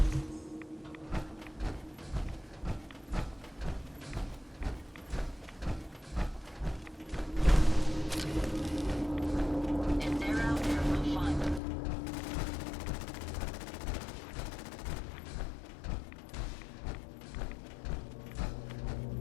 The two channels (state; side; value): drops out; right; at 11.6 s